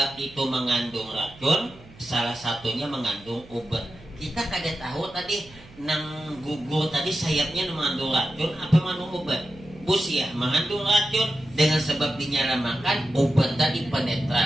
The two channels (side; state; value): right; noise; hum, 23 dB below the sound